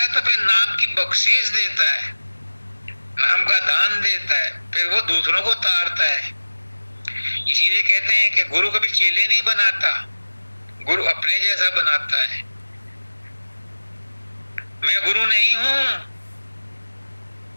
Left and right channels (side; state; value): both; inverted; correlation -1.00